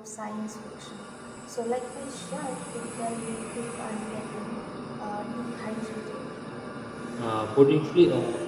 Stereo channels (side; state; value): both; identical; correlation 1.00